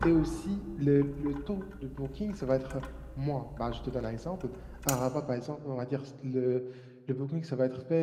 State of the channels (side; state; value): both; identical; correlation 1.00